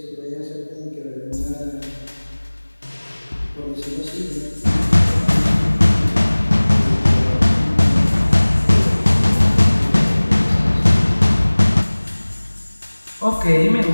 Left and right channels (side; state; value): both; inverted; correlation -1.00